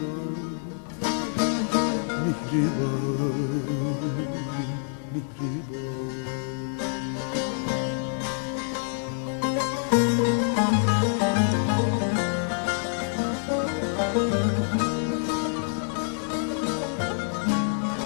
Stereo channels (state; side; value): silent; right; digital silence